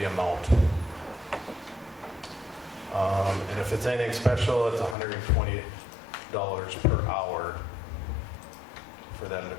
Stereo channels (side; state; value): right; drops out; at 5.0 s